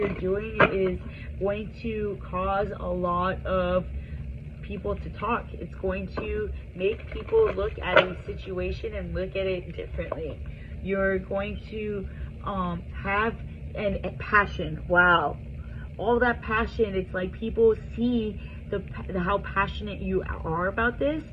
doing is going to cause a lot of people to talk. It's going to make people look at a situation and look at it differently. You're going to have a passion. Wow, all that passion. It's like people see how passionate you are about this,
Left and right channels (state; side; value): identical; both; correlation 1.00